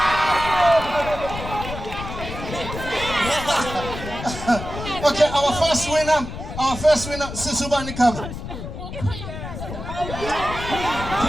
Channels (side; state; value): left; noise; rumble, 8 dB below the sound